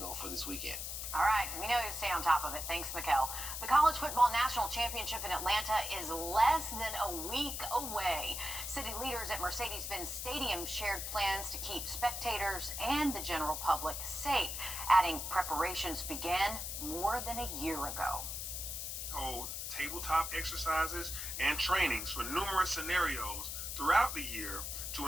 for this weekend. All right, we know you stay on top of it. Thanks, Mikkel. The College Football National Championship in Atlanta is less than a week away. City leaders at Mercedes-Benz Stadium shared plans to keep spectators and the general public safe, adding preparations began more than a year ago. Hold tabletop exercises and trainings for numerous scenarios throughout the year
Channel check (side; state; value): left; noise; hiss, 5 dB below the sound